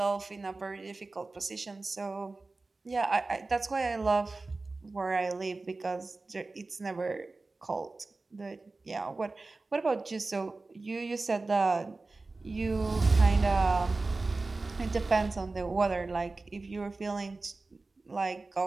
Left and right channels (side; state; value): left; quieter; 3.5 dB